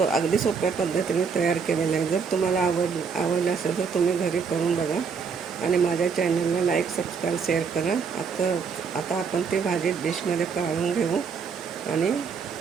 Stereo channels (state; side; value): quieter; left; 5.8 dB